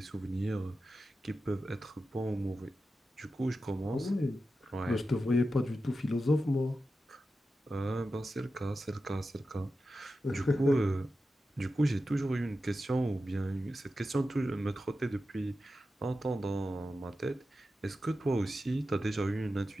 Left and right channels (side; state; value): both; normal; correlation 0.92